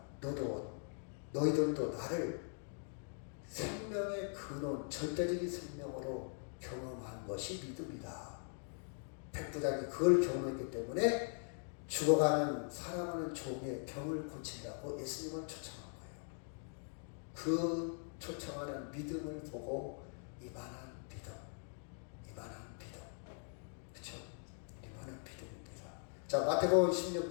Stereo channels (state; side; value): silent; right; 50 dB below the other